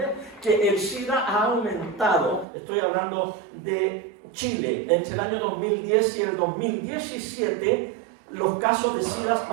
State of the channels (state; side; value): drops out; left; at 2.5 s